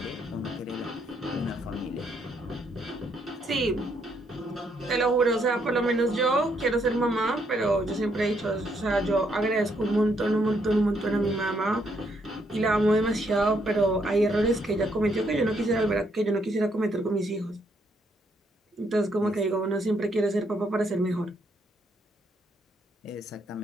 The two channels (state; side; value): normal; both; correlation 0.73